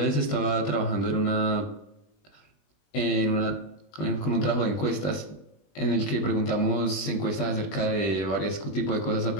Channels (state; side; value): late; right; 20 ms